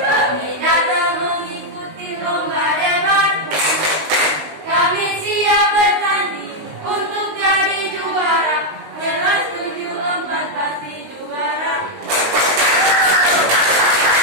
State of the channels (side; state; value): left; late; 19 ms